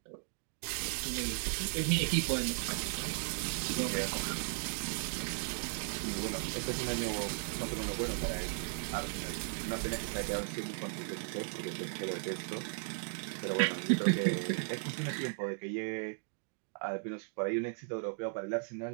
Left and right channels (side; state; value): left; silent; digital silence